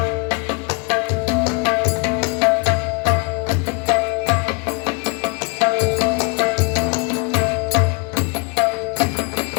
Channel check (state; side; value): quieter; right; 32.8 dB